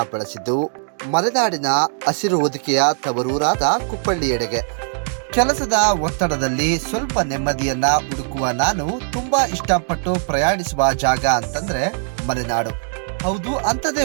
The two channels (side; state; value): left; silent; digital silence